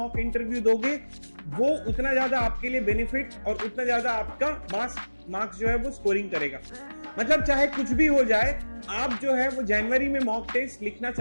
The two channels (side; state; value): both; inverted; correlation -1.00